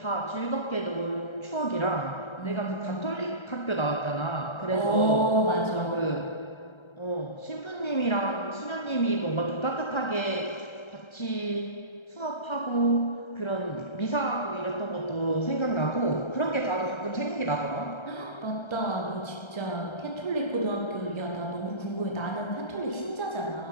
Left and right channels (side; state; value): right; late; 1.3 ms